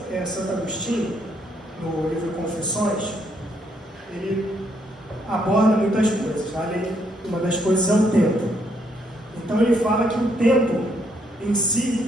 Agostinho, no livro Confissões, ele aborda muitas coisas. Ali, uma das coisas é o tempo. Então ele fala que o tempo em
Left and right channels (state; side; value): normal; both; correlation 0.73